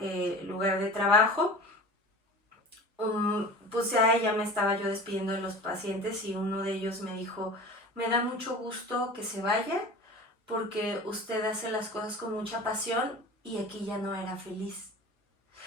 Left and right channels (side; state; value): both; normal; correlation 0.37